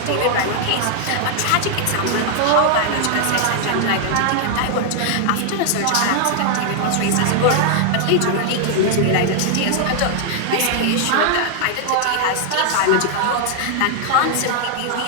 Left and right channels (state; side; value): different; both; correlation 0.00